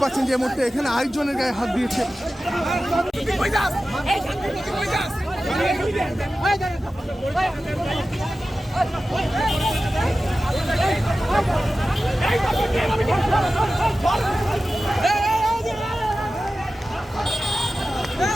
পাচ্ছেন যে এই মুহূর্তে এখানে আরেকজনের গায়ে হাত দিয়েছে।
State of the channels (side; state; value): both; normal; correlation 0.94